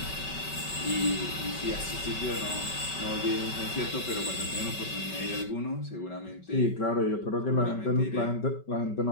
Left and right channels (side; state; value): right; late; 5.2 ms